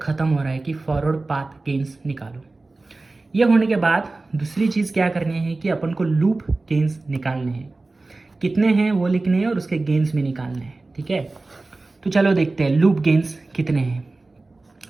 हो रहा है कि फॉरवर्ड पाथ गेन्स निकालो। ये होने के बाद दूसरी चीज़ क्या करनी है कि अपन को लूप गेन्स निकालने हैं। कितने हैं वो लिखने हैं और उसके गेन्स भी निकालने हैं। ठीक है, तो चलो देखते हैं लूप गेन्स कितने हैं।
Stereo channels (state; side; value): quieter; left; 3.3 dB